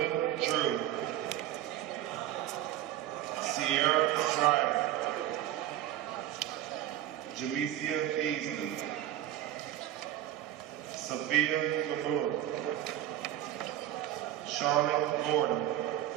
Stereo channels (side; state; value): left; quieter; 12.5 dB